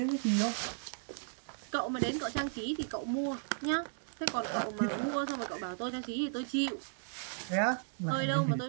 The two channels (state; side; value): silent; left; digital silence